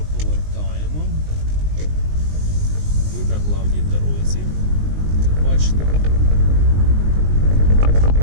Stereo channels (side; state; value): left; late; 19 ms